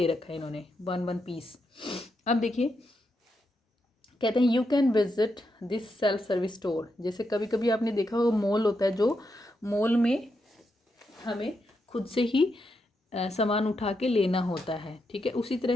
रखा है इन्होंने, वन पीस. अब देखिए, कहते हैं you can visit this self service store. जैसे कभी कभी आपने देखा होगा मॉल होता है, जो मॉल में हमें खुद से ही सामान उठा के लेना होता है. ठीक है, उसी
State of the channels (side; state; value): both; normal; correlation 0.83